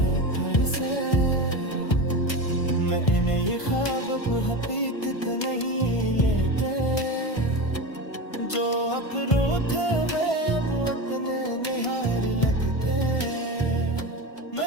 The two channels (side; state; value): right; late; 1.5 ms